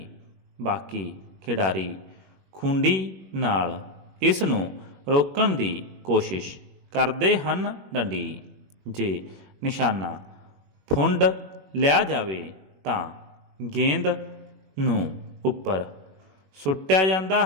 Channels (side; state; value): left; late; 21 ms